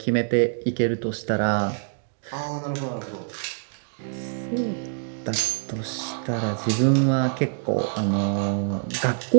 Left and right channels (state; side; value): silent; left; digital silence